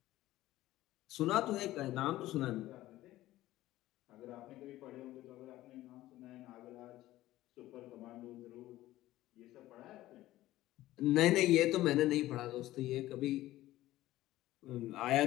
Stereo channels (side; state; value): right; quieter; 15.7 dB